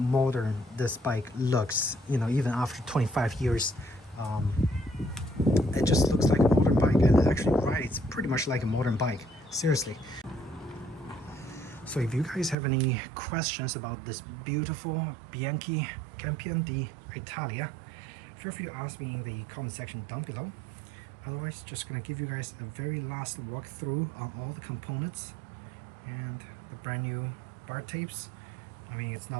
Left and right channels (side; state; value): left; drops out; at 12.6 s